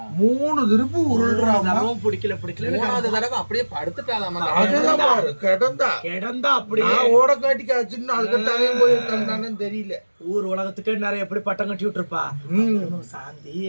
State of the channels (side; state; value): both; inverted; correlation -1.00